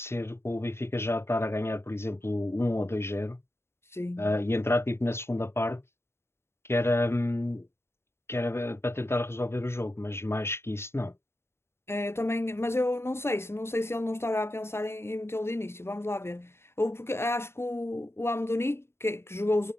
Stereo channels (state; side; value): late; right; 0.12 ms